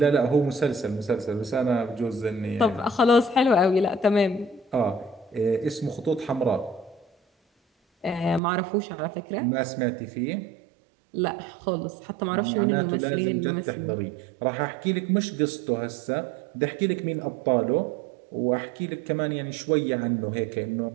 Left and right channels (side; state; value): left; drops out; at 8.4 s